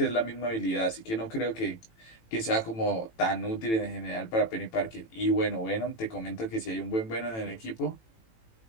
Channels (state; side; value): late; right; 18 ms